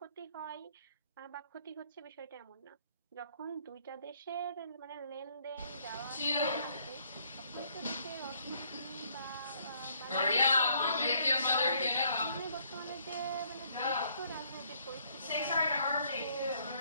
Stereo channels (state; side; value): inverted; both; correlation -0.66